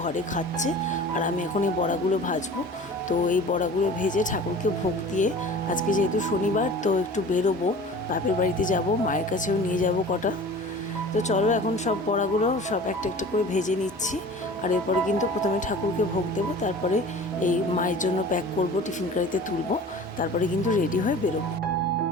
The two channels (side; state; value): both; normal; correlation 0.41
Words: ঘরে খাচ্ছে। আর আমি এখন এই বড়াগুলো ভাজবো। তো এই বড়াগুলো ভেজে ঠাকুরকে ভোগ দিয়ে, আজকে যেহেতু শনিবার তো একটু বেরোবো, বাপের বাড়িতে যাব, মায়ের কাছেও নিয়ে যাব কটা। তো চলো এখন সব বড়াগুলো সব একটা একটা করে ভেজে নিচ্ছি। আর এরপরে কিন্তু প্রথমে ঠাকুরকে ভোগ দেবো, তারপরে এই মায়ের জন্য প্যাক করব, টিফিন কারিতে তুলবো, তারপরে কিন্তু রেডি হয়ে বেরোবো।